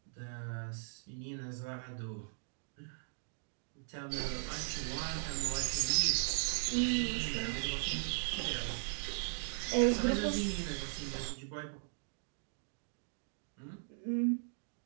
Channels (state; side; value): silent; left; digital silence